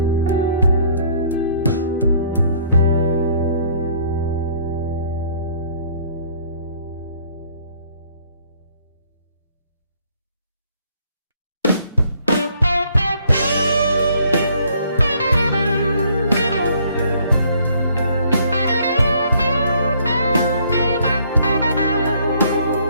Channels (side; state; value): both; inverted; correlation -0.62